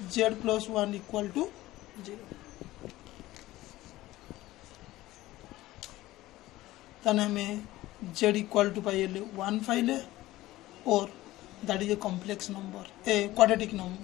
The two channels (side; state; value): right; quieter; 16.9 dB